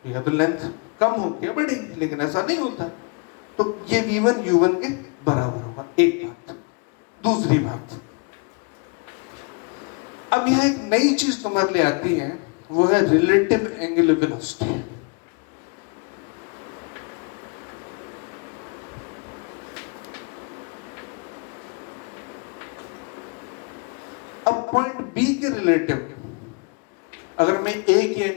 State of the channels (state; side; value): quieter; right; 33.4 dB